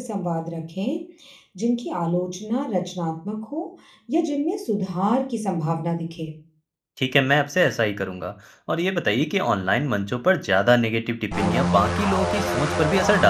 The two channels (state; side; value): identical; both; correlation 1.00